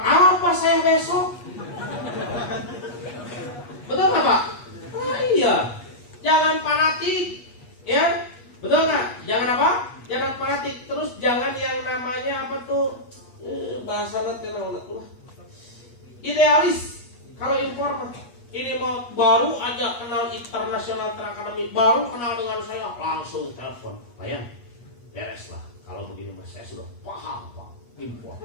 saya besok? Betul nggak Pak? Oh iya, jangan fanatik, ya, betul nggak? Jangan apa? Jangan fanatik. Terus jangan yang namanya apa tuh? Bahasa nanti idealis. Kalau impor mah ini mau baru aja kenal International Trade Academy, baru kenal dengan saya langsung telepon, Pak Yan, beres lah. Kalau begini mas saya sudah paham Pak, impor.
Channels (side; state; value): right; late; 8.4 ms